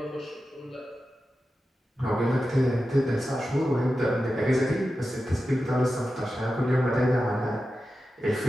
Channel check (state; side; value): normal; both; correlation 0.92